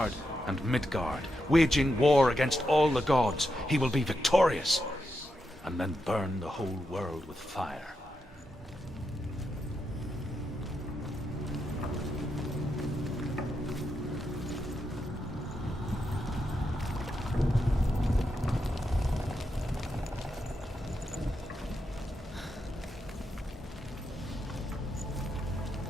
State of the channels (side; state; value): both; normal; correlation 0.85